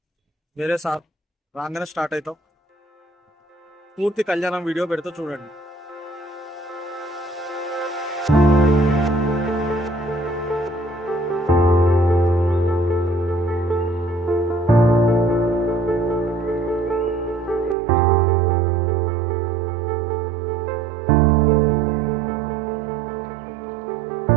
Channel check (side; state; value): left; drops out; at 17.8 s